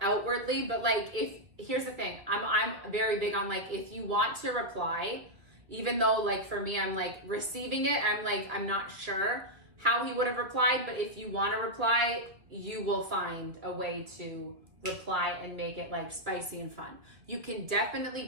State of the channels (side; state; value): left; late; 1.9 ms